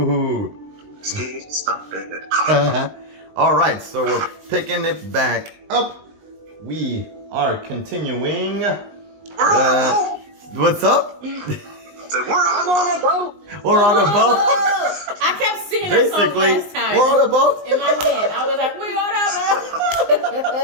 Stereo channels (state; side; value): late; left; 19 ms